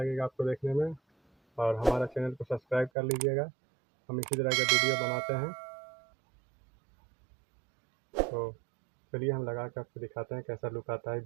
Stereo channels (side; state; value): left; drops out; at 2.9 s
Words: आपको देखने में, और हमारा चैनल को सब्सक्राइब कर लीजिएगा। हम इसी तरह का वीडियो बनाते हैं। तो चलिए हम लगा कर आपको दिखाते हैं कैसा लुक आता है